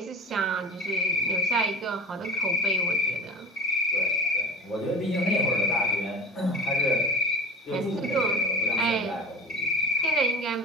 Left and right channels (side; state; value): both; normal; correlation 0.32